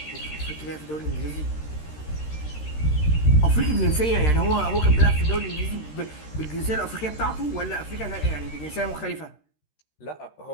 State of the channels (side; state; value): right; late; 13 ms